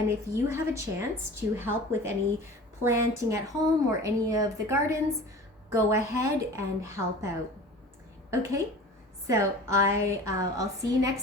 if you have a chance to help with any planting at home or any of the gardens, go ahead and help out. Okay, so I'll see you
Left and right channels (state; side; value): normal; both; correlation 0.39